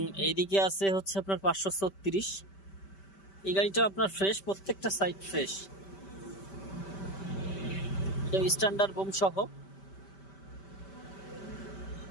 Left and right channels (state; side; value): late; right; 5.1 ms